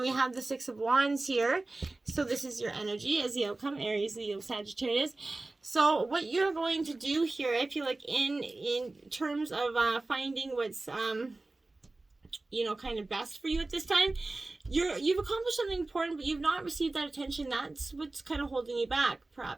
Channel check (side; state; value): left; quieter; 3.1 dB